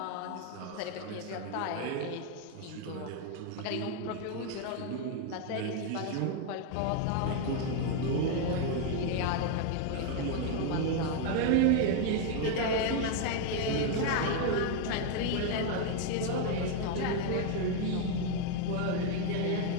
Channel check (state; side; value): different; both; correlation 0.01